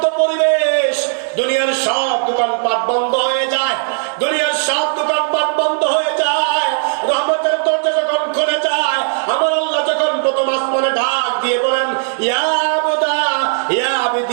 পরিবেশ, দুনিয়ার সব দোকানপাট বন্ধ হয়ে যায়, দুনিয়ার সব দোকানপাট বন্ধ হয়ে যায়, রহমতের দরজা যখন খুলে যায়, আমার আল্লাহ যখন প্রথম আসমানে ঢাক দিয়ে বলেন, ইয়া আবদা ইয়া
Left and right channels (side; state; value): left; silent; digital silence